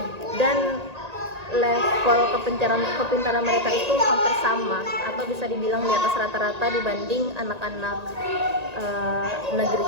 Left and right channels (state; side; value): late; left; 1.9 ms